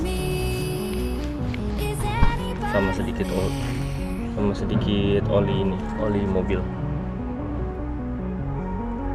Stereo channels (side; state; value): both; identical; correlation 1.00